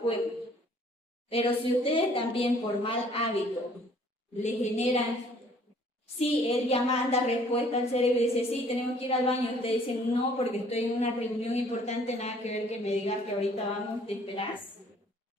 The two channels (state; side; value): normal; both; correlation 0.58